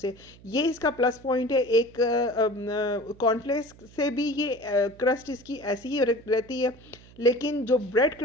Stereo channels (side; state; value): right; noise; hum, 23 dB below the sound